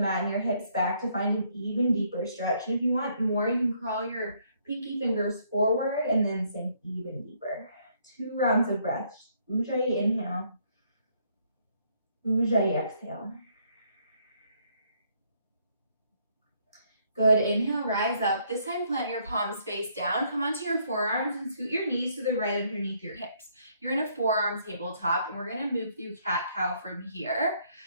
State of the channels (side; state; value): both; inverted; correlation -0.69